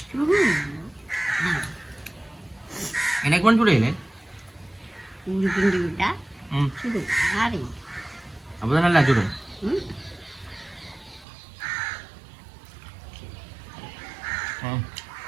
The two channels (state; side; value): drops out; left; at 11.2 s